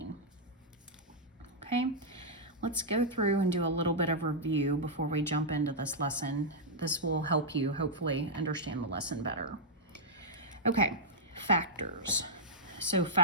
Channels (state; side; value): normal; both; correlation -0.08